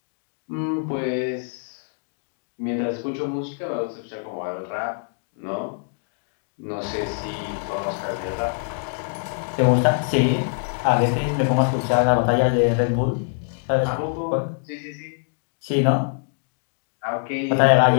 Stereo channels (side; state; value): right; silent; digital silence